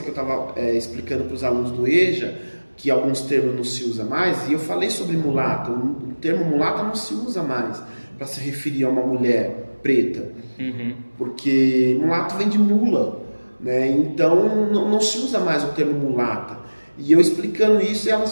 eu estava explicando para os alunos do EJA que alguns termos não se usa mais, e eu falei sobre mulata, o termo mulata não se usa mais para se referir a uma mulher preta, porque mulato vem de mula, né? Então não se usa mais o termo mulata. E eu explicando isso, e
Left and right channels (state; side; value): inverted; both; correlation -1.00